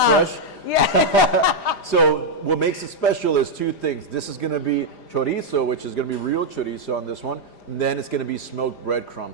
Yeah. So what makes it special is two things. This is going to be chorizo, which is going to be real chorizo on this one. And then it's going to be smoked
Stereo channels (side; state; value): right; late; 5.0 ms